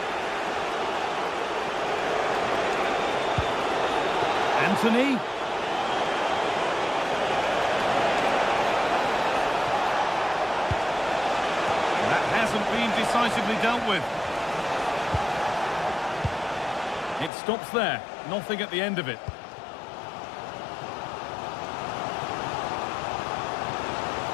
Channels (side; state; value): right; drops out; at 17.3 s